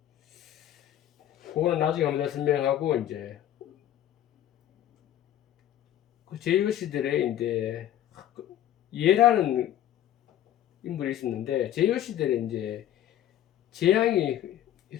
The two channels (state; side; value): quieter; right; 11.8 dB